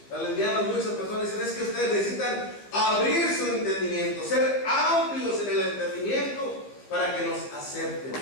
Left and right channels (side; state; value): right; late; 15 ms